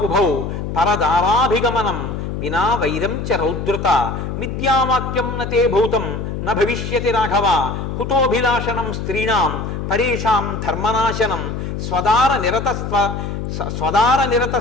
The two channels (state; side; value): noise; left; hum, 5 dB below the sound